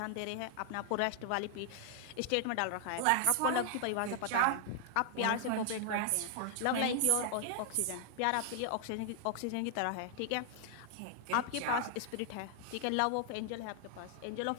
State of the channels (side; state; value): both; different; correlation 0.00